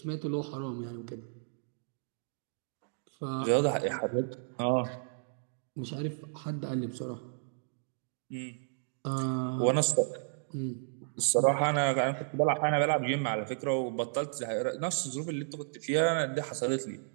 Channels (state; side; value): silent; left; digital silence